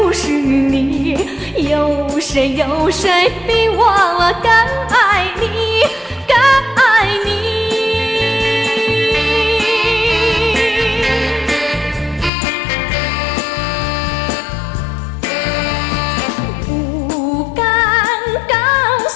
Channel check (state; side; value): drops out; right; at 12.3 s